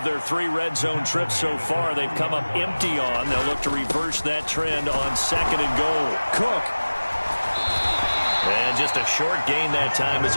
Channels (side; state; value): both; inverted; correlation -1.00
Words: their 3 red zone trips so far they've come up empty on. They'll look to reverse that trend on 2nd and goal. Cook. And just a short gain that time as